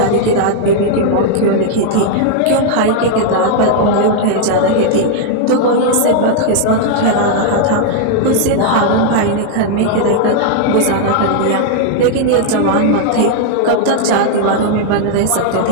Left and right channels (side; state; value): both; different; correlation -0.01